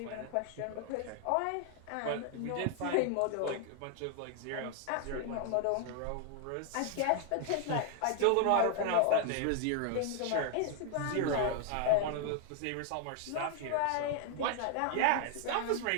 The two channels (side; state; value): both; different; correlation 0.00